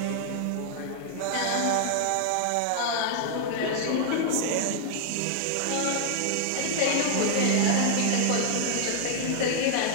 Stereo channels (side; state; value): both; different; correlation -0.01